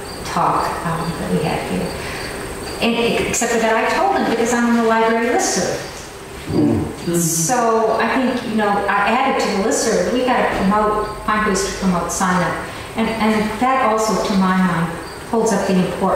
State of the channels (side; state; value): both; identical; correlation 1.00